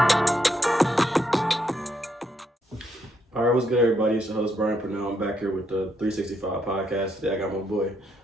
What's good, everybody? It's your host, Brian Pernell. I'm back here with the 3Sixty5Podcast. Today I got my boy,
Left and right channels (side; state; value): both; normal; correlation 0.76